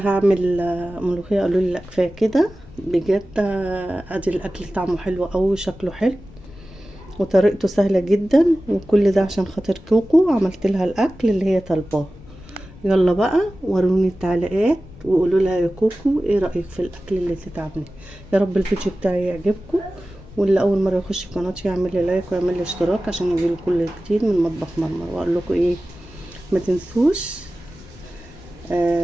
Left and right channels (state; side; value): noise; left; rumble, 21 dB below the sound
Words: ملوخيه، قالوا لي لا كفايه كده بجد. ادي الاكل طعمه حلو قوي، شكله حلو، وطريقته سهله جدا، وكل ده عشان خاطر كوكو عملت لها الاكل اللي هي طالباه. يلا بقى وروني التعليقات وقولوا لها يا كوكو ايه رايك في الاكل اللي تتعملي. يا رب الفيديو بتاعي يعجبكم، واللي اول مره يخش قناتي يعمل لي لايك ويعمل لي اشتراك عشان يجيله كل جديد من مطبخ مرمر. واقول لكم ايه، ما تنسوش